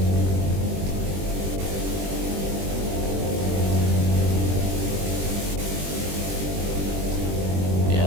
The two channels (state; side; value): late; left; 21 ms